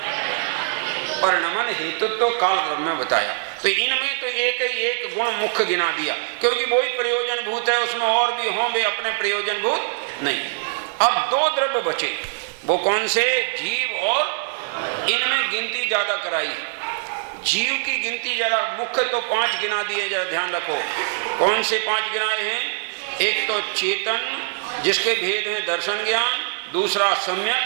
परिणमन हेतुत्व काल द्रव्य में बताया। तो इनमें तो एक गुण मुख्य गिना दिया, क्योंकि वही प्रयोजन भूत है, उसमें और भी हों, वे अपने प्रयोजन भूत नहीं। अब 2 द्रव्य बचे, वो कौन से? जीव और इनमें गिनती ज्यादा कराई। जीव की गिनती ज्यादा, मुख्य तो 5 गिना दिए, जरा ध्यान रखो। कौन से 5 गिनाए हैं? एक तो चेतन जिसके भेद हैं दर्शन ज्ञान, दूसरा सम्यक,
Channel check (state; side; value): silent; left; digital silence